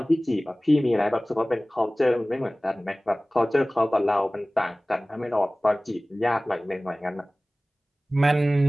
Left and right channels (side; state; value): both; normal; correlation 0.98